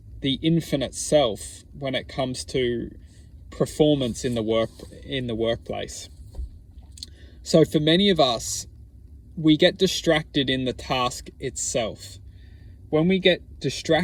the infinite self when it comes to performance in the workplace. So for many of us, we get distracted in the task itself. When we get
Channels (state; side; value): identical; both; correlation 1.00